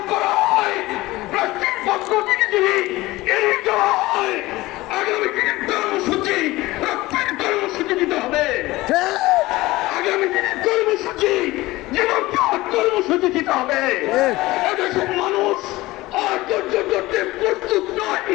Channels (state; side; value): quieter; right; 19.1 dB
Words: করা হয়, রাষ্ট্রের পক্ষ থেকে যদি এড়িয়ে যাওয়া হয়, আগামী দিনের কর্মসূচি রক্তের কর্মসূচি দিতে হবে। আগামী দিনের কর্মসূচি জীবন কর্মসূচি দিতে হবে। এদেশের মানুষ আর ধৈর্য ধরতে প্রস্তুত নয়।